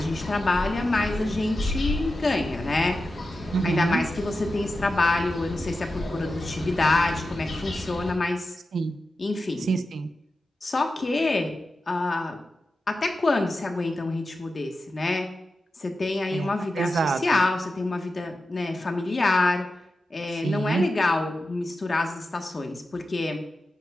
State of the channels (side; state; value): both; normal; correlation 0.92